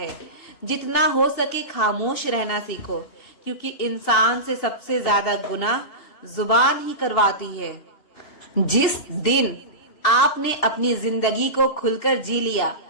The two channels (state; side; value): late; right; 2.7 ms